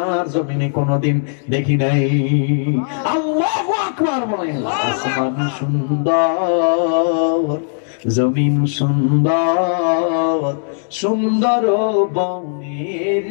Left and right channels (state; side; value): silent; right; digital silence